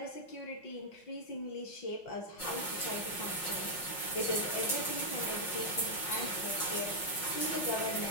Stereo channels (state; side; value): late; right; 5.5 ms